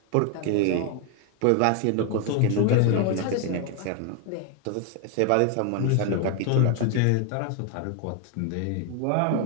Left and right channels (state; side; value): different; both; correlation 0.01